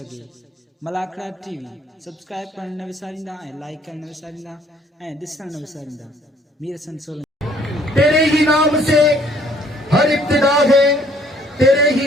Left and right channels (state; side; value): normal; both; correlation 0.61